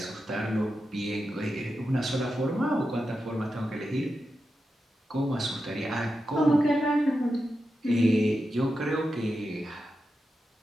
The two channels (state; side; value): normal; both; correlation 0.89